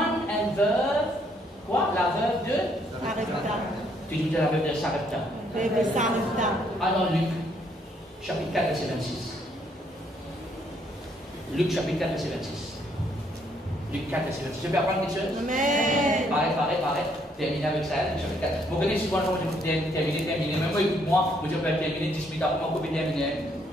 un veuve. Quoi? La veuve de Sarepta. Tu dis la veuve de Sarepta. Veuve de Sarepta. Alors Luc, chapitre 4, verset 26. Luc, chapitre 4, verset 26. Luc 4, verset 26. Je peux apprendre quelque chose? Amen. Pareil. Terminer avec ça, Luc chapitre 4. Vous connaissez souvent, je vais terminer. Même moi, écoute-moi, je peux terminer 10 minutes après, moi, je peux terminer.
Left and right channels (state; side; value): normal; both; correlation 0.69